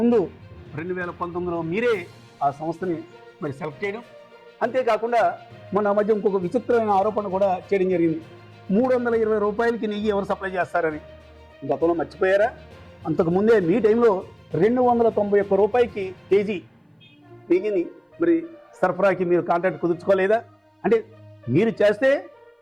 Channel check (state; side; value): identical; both; correlation 1.00